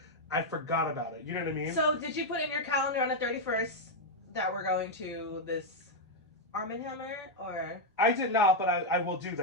I forgot about it. You know what I mean? So did you put in your calendar on the 31st that we're going to this Arm & Hammer, or? I did not, but I will do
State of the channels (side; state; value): both; normal; correlation 0.00